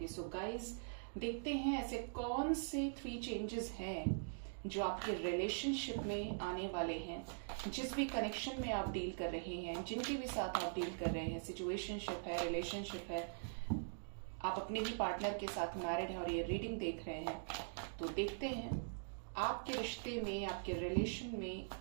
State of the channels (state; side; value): silent; left; digital silence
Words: सो गाइज, देखते हैं ऐसे कौन से 3 चेंजेस हैं जो आपके रिलेशनशिप में आने वाले हैं। जिस भी कनेक्शन में आप डील कर रहे हैं, जिनके भी साथ आप डील कर रहे हैं, सिचुएशनशिप है, रिलेशनशिप है, आप अपने ही पार्टनर के साथ मैरिड हैं और ये रीडिंग देख रहे हैं, तो देखते हैं आपके रिश्ते में, आपके रिलेशन में